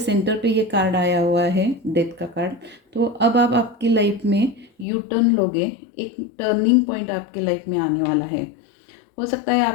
पे ये कार्ड आया हुआ है, डेथ का कार्ड। तो अब आप आपकी लाइफ में यू टर्न लोगे, एक टर्निंग पॉइंट आपके लाइफ में आने वाला है। हो सकता है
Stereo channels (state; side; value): drops out; right; at 4.9 s